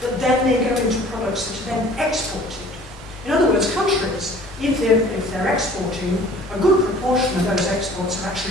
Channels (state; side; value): normal; both; correlation 0.50